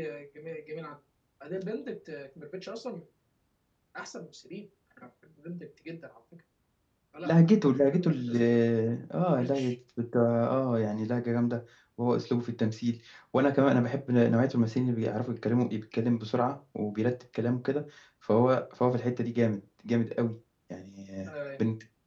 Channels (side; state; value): both; identical; correlation 1.00